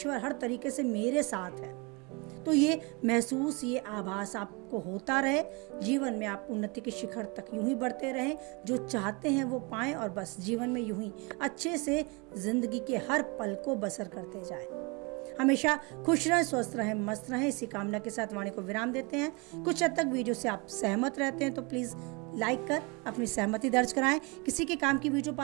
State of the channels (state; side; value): quieter; left; 29.4 dB